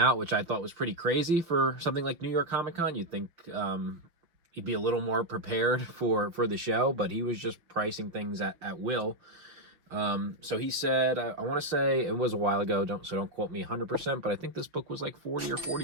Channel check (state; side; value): late; left; 6.0 ms